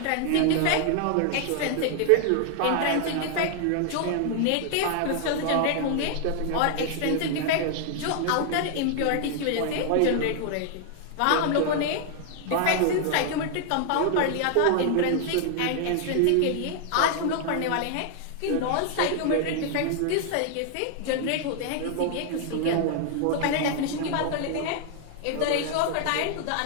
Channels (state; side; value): different; both; correlation 0.00